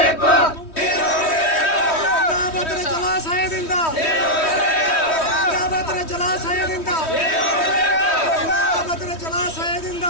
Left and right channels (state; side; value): late; right; 3.1 ms